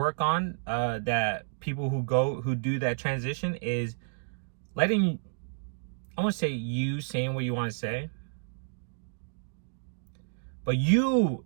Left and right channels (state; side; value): silent; left; digital silence